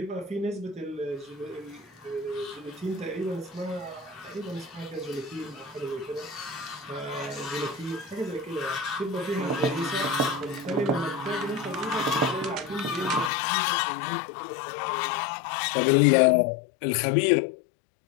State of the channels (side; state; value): right; drops out; at 13.3 s